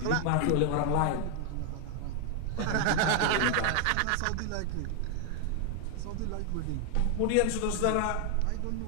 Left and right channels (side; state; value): both; different; correlation 0.00